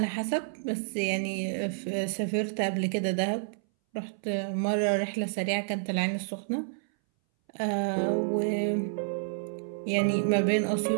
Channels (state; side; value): silent; left; 58 dB below the other